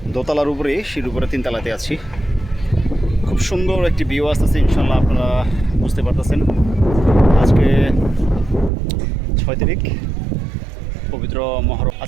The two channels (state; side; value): drops out; left; at 8.7 s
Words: দোতলার উপরে, সিঁড়ির উপরে 3 তলাতে আছি। খুব সুন্দর একটি ভিউ আসতেছে, ইনশাল্লাহ আপনারা বুঝতে পারতেছেন। আজকে 6 তারিখ, পবিত্র মহরম